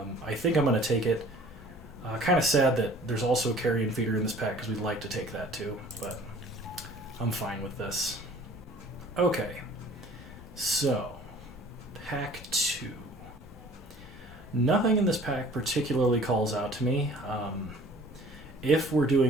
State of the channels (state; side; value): normal; both; correlation 0.50